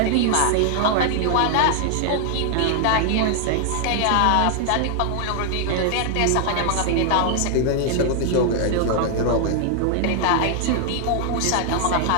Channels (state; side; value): different; both; correlation 0.00